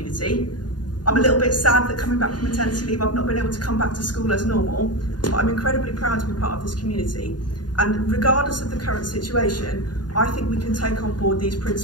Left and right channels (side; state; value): right; late; 0.70 ms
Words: I'm a little bit sad that coming back from maternity leave, I've not been able to come back to school as normal, but I'm incredibly proud to be part of this community. And regardless of the current situation, I think we can take on board these